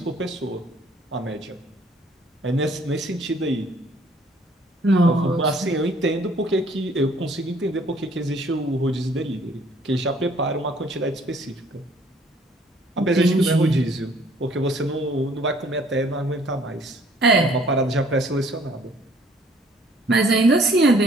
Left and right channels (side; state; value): both; normal; correlation 0.59